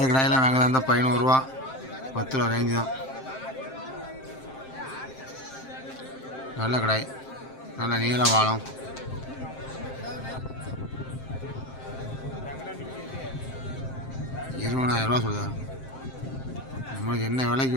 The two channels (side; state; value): right; late; 7.6 ms